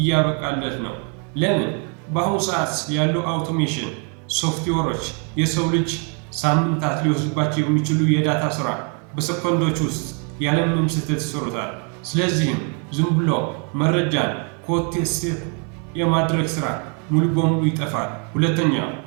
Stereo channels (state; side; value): quieter; left; 36.8 dB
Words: ነው። ለምን? በአሁኑ ሰዓት ያሉ አውቶሜሽን ሶፍትዌሮች የሰው ልጅ ሳምንታት ሊወስድባቸው የሚችሉ የዳታ ስራ በሰኮንዶች ውስጥ ያለምንም ስህተት ይሰሩታል። ስለዚህም ዝም ብሎ መረጃን ኮቴ ሴቭ የማድረግ ስራ ሙሉ በሙሉ ይጠፋል። ሁለተኛው